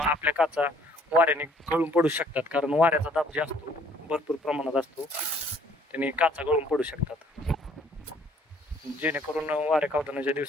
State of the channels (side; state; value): both; normal; correlation 0.60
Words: काचा वाऱ्याने गळून पडू शकतात. कारण वाऱ्याचा दाब जे असतो भरपूर प्रमाणात असतो त्याने काचा गळून पडू शकतात. जेणेकरून वारे कावतानाच्या